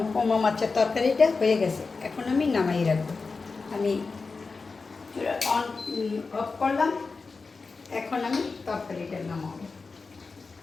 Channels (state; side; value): quieter; right; 4.3 dB